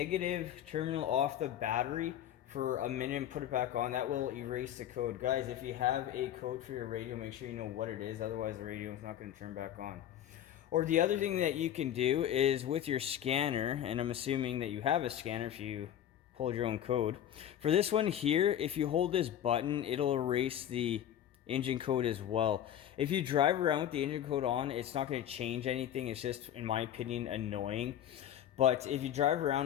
terminal off the battery for a minute and put it back on. That will erase the code. Guys, if you have a code for your radio, make sure you know what it is, otherwise the radio is not going to turn back on. Or the other thing that you can do is with your scanner, and I'm assuming that you have a scanner if you pulled your own code. For this one here, if you hold this button, it'll erase the engine code as well. If you drive around with the engine code on, it's not going to change anything. It's just, in my opinion, annoying. But if you drive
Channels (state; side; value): quieter; right; 10.8 dB